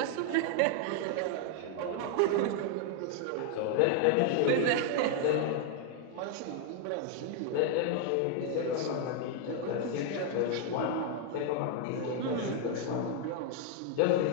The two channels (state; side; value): different; both; correlation 0.00